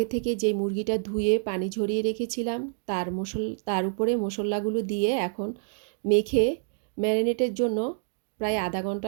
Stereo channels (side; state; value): left; silent; digital silence